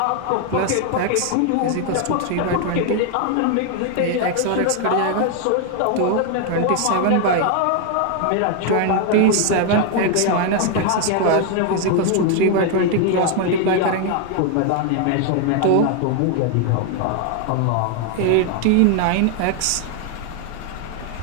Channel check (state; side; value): different; both; correlation 0.00